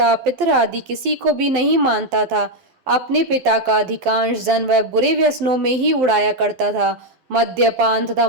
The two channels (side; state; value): left; late; 12 ms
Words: पितर आदि किसी को भी नहीं मानता था। अपने पिता का अधिकांश धन वह बुरे व्यसनों में ही उड़ाया करता था। मद्यपान तथा